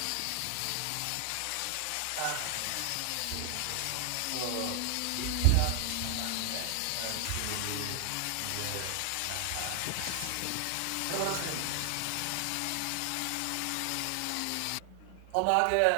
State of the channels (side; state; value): both; different; correlation 0.00